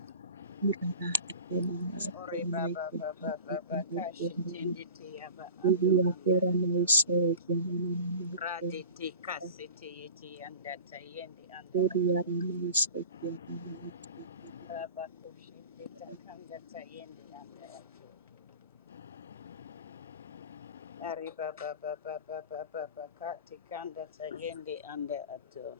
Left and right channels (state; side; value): inverted; both; correlation -0.38